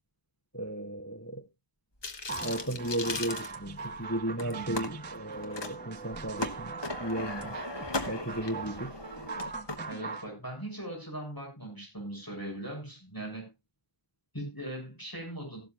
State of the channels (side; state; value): right; late; 1.2 ms